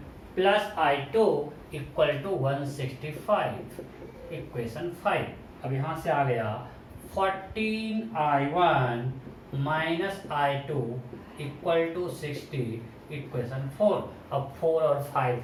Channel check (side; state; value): both; identical; correlation 1.00